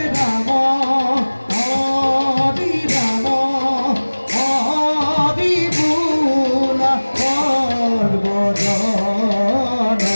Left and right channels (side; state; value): both; inverted; correlation -1.00